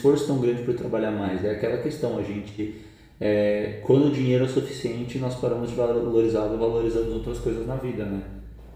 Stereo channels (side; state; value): both; identical; correlation 1.00